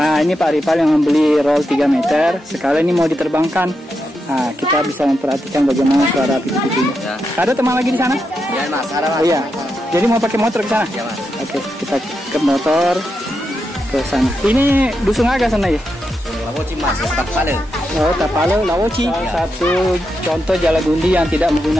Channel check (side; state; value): both; normal; correlation 0.85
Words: ini Pak Rifal yang membeli roll 3 meter. Sekali ini mau diterbangkan. Nah, kita bisa memperhatikan bagaimana suara pitu-pitunya. Ya. Ada teman lagi di sana? Ya Mas, ada Mas. Oh iya. Jadi mau pakai motor ke sana? Ya Mas. Oke, kita ke motor ke sana. Ini dusun agak sana ya? Lawoci Mas, Tapale. Oh, Tapale, Lawoci. Satu contoh Jalagundi yang tidak